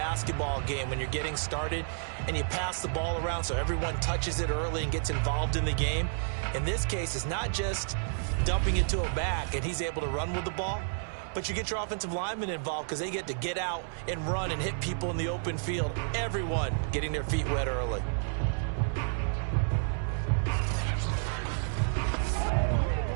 game when you're getting started and you pass the ball around so everyone touches it early and gets involved in the game. In this case, it's not just dumping it to a back and he's able to run with the ball, but you get your offensive linemen involved because they get to get out and run and hit people in the open field. Everyone getting their feet wet early.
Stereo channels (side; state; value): left; silent; 57 dB below the other